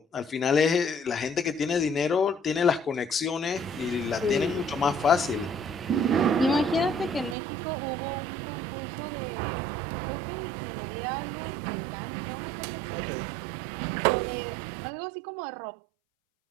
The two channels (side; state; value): left; drops out; at 7.4 s